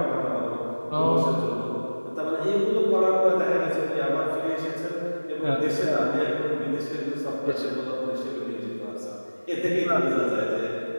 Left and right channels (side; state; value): both; inverted; correlation -1.00